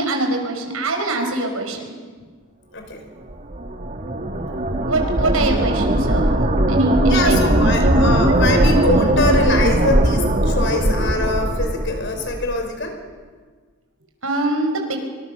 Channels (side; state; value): both; normal; correlation 0.44